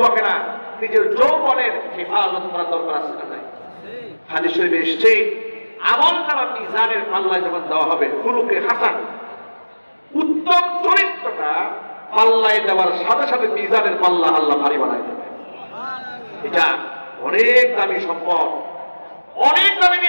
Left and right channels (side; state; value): both; inverted; correlation -1.00